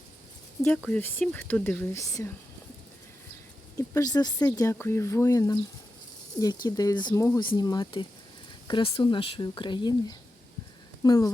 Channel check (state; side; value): normal; both; correlation 0.90